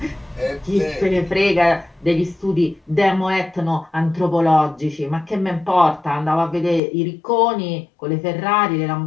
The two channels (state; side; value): drops out; right; at 6.8 s